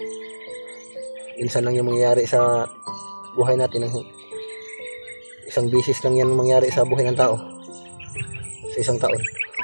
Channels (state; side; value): inverted; both; correlation -1.00